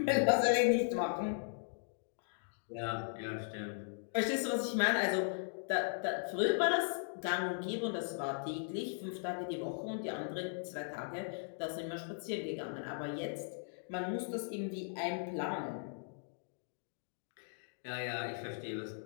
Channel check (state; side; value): silent; right; digital silence